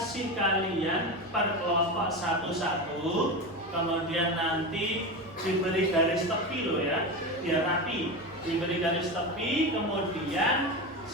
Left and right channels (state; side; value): noise; right; rumble, 28 dB below the sound